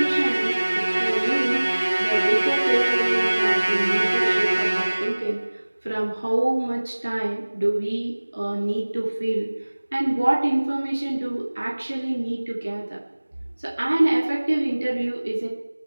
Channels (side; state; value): both; inverted; correlation -1.00